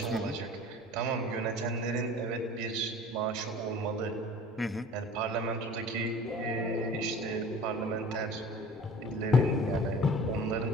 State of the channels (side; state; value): both; normal; correlation 0.44